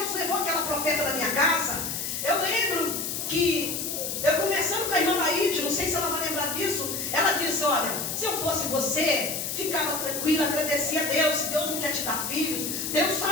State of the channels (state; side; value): noise; left; hiss, 3 dB below the sound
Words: levou aquela profeta da minha casa, eu lembro que eu conversando com a irmã Laíde, não sei se ela vai lembrar disso, ela disse, olha, se eu fosse você, ficava tranquila, agradecia a Deus. Se Deus não quer te dar filhos, Deus